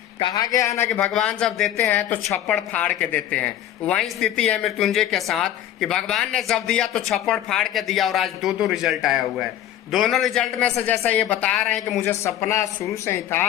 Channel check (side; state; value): right; quieter; 11.7 dB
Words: कहा गया है ना कि भगवान जब देते हैं तो छप्पड़ फाड़ के देते हैं। वही स्थिति है मृत्युंजय के साथ कि भगवान ने जब दिया तो छप्पड़ फाड़ के दिया और आज 2 रिजल्ट आया हुआ है। दोनों रिजल्ट में से जैसा ये बता रहे हैं कि मुझे सपना शुरू से ही